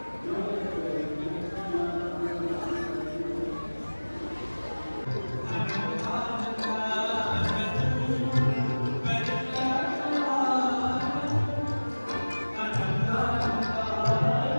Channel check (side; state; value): both; inverted; correlation -1.00